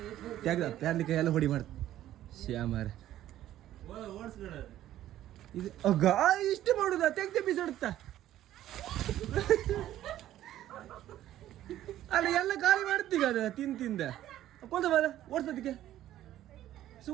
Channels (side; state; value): left; quieter; 13.0 dB